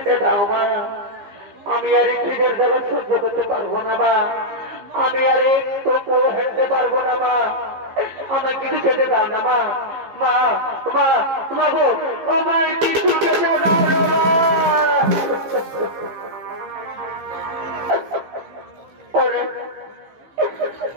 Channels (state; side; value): late; left; 15 ms